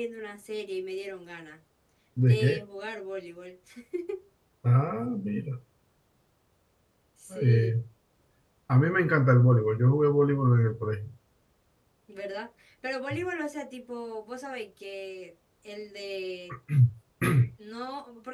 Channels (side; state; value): both; identical; correlation 1.00